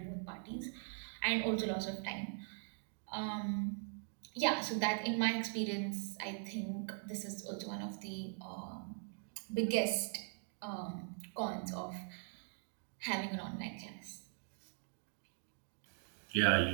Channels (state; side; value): silent; left; 50 dB below the other